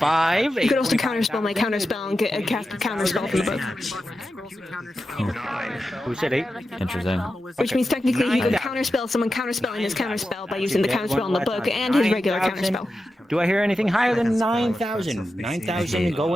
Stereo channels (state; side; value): normal; both; correlation 0.91